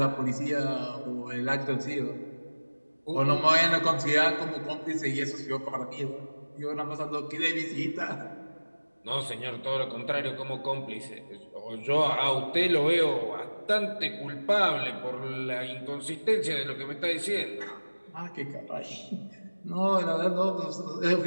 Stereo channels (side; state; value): both; inverted; correlation -1.00